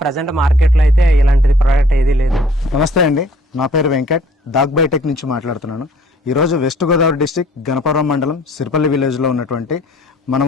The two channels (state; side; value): normal; both; correlation 0.57